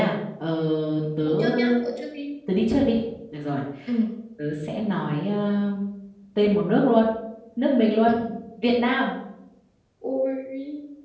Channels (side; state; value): both; identical; correlation 1.00